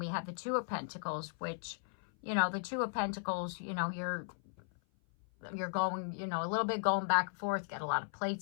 we have the Two of Pentacles, which, you know, the Two of Pentacles, you know, you're going, you know, a little bit going back and forth, get a lot of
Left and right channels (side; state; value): right; silent; 53 dB below the other